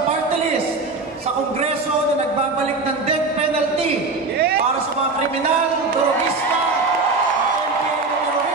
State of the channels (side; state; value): left; quieter; 3.7 dB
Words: party list sa Kongreso na nagbabalik ng death penalty para sa mga kriminal, terorista,